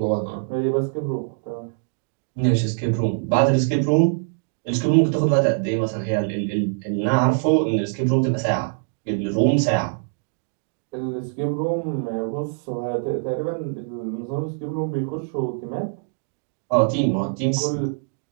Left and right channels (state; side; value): silent; left; digital silence